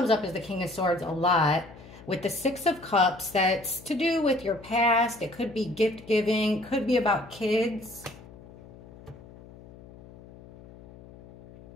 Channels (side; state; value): left; noise; hum, 20 dB below the sound